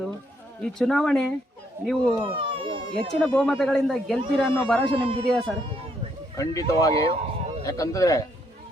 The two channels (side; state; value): both; normal; correlation 0.72